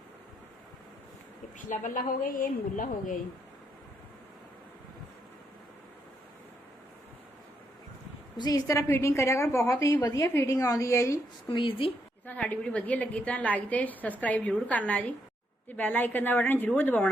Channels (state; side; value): normal; both; correlation 0.77